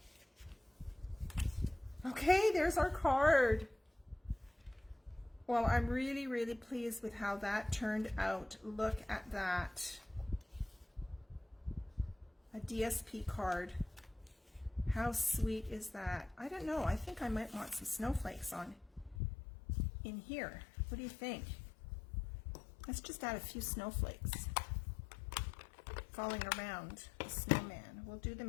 Okay, there's our card. Well, I'm really, really pleased with how that turned out. Look at that. A DSP card. How sweet is that? I don't know. I think I might want some snowflakes on in here. What do you think? Let's just add a few snowflakes falling around the snowman. We'll do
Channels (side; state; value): right; drops out; at 19.2 s